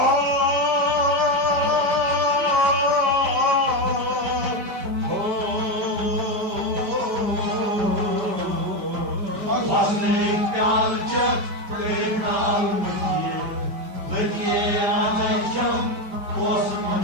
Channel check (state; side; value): late; left; 5.0 ms